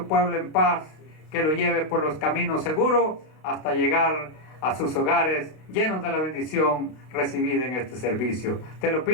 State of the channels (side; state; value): right; late; 32 ms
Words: pueblo en paz, que lo lleve por los caminos seguros hasta llegar a sus hogares llenos de la bendición recibida en este servicio. Te lo